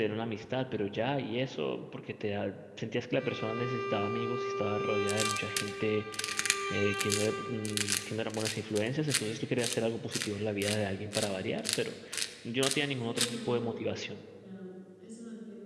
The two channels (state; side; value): identical; both; correlation 1.00